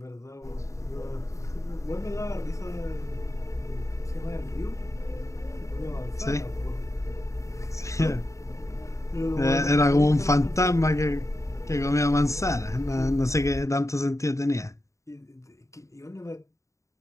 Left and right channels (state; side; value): late; right; 0.15 ms